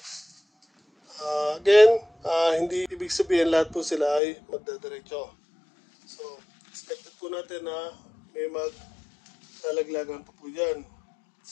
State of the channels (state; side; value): drops out; right; at 4.2 s